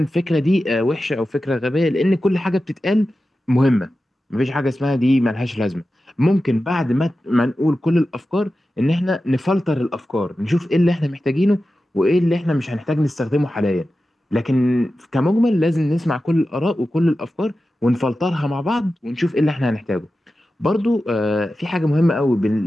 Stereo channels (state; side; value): normal; both; correlation 0.93